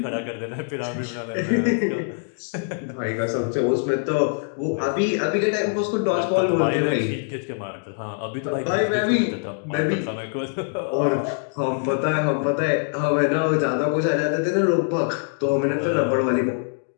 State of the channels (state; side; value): silent; right; digital silence